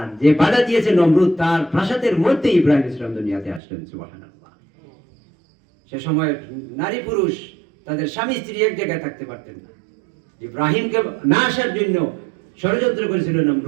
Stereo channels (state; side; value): drops out; left; at 3.6 s